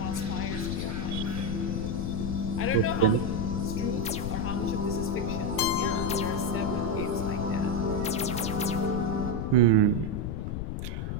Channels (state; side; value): noise; left; rumble, 3 dB below the sound